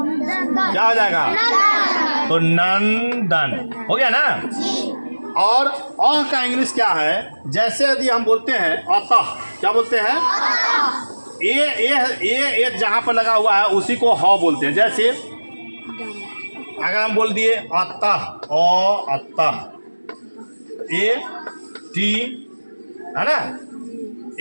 हो जाएगा? तो नंदन हो गया ना। और अह का इंग्लिश क्या है? जैसे यदि हम बोलते हैं अतः, क्या बोलते हैं? ए जहां पर लगा हुआ है उसी को ह बोलते हैं। जैसे अगर हम बोल दिए अतः, अतः, AT है ना,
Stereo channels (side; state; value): both; inverted; correlation -1.00